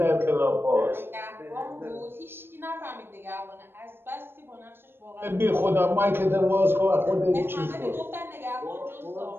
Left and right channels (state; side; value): late; left; 0.10 ms